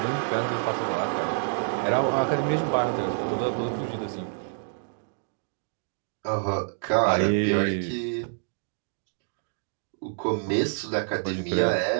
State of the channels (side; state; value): left; silent; digital silence